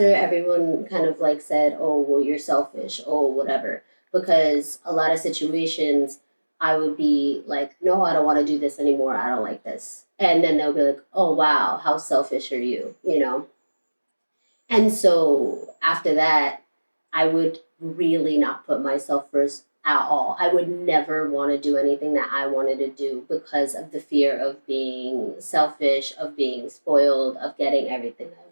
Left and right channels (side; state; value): both; inverted; correlation -1.00